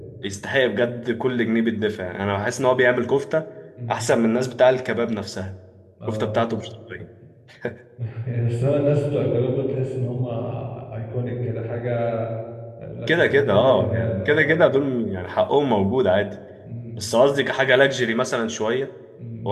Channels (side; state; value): both; identical; correlation 1.00